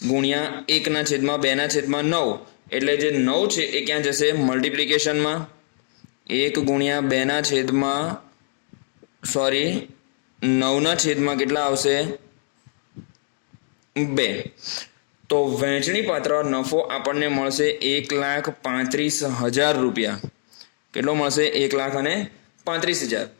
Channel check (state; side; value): silent; right; digital silence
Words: 1/2/9 એટલે જે 9 છે એ ક્યાં જશે? મલ્ટિપ્લિકેશનમાં. 1 ગુણ્યા 9/છેદમાં કેટલા આવશે? 2. તો વહેંચણી પાત્ર નફો આપણને મળશે 1,35,000 રૂપિયા. કેટલો મળશે? 1,35,000.